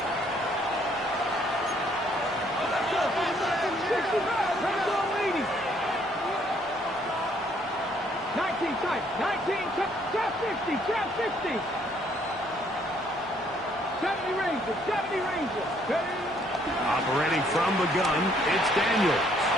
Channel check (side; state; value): both; normal; correlation 0.66